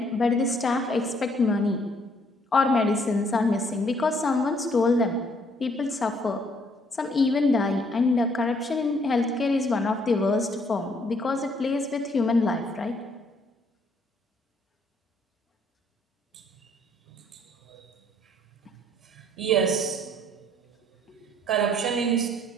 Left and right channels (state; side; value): normal; both; correlation 0.65